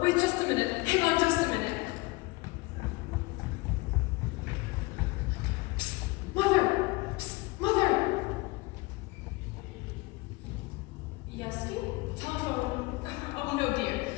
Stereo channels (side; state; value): right; quieter; 23.6 dB